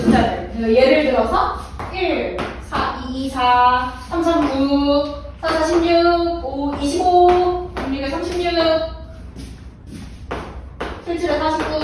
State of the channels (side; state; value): both; identical; correlation 1.00